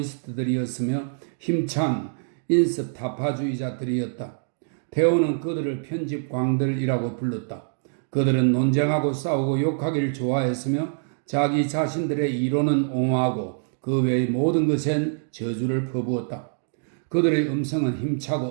힘찬 인습 타파주의자들이었다. 테오는 그들을 편집광들이라고 불렀다. 그들은 논쟁하고 싸우고 욕하기를 좋아했으며 자기 자신들의 이론은 옹호하고 그 외의 모든 것엔 저주를 퍼부었다. 그들의 음성은 힘차고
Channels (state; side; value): silent; left; digital silence